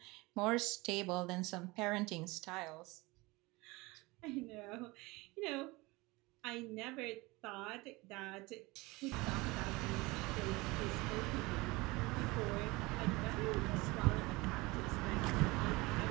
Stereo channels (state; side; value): quieter; left; 23.0 dB